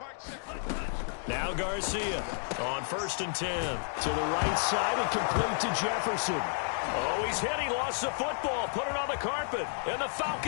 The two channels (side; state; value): right; silent; digital silence